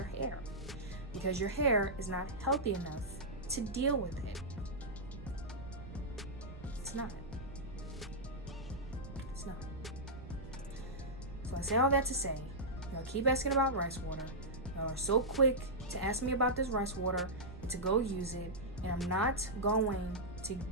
hair because your hair is not healthy enough to deal with it. It's not. It's not. So I say all that to say, y'all keep asking about rice water. Y'all are so quick to ask me about this rice water and to go use it. And I'm not going to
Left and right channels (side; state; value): right; noise; rumble, 12 dB below the sound